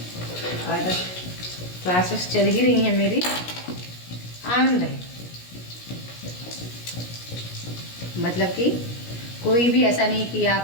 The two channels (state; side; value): late; right; 17 ms